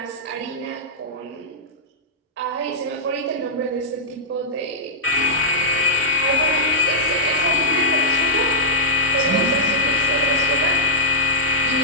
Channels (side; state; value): both; normal; correlation -0.11